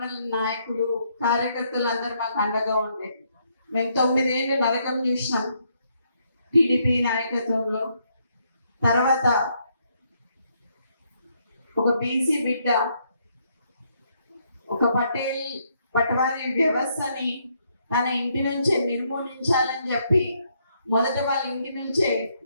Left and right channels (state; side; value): inverted; both; correlation -0.73